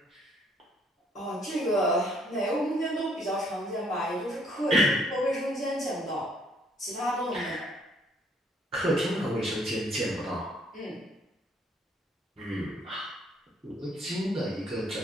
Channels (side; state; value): both; normal; correlation 0.65